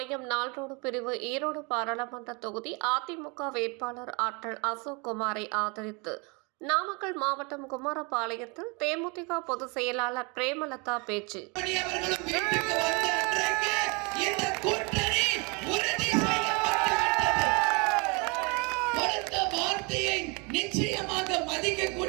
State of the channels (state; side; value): quieter; left; 30.5 dB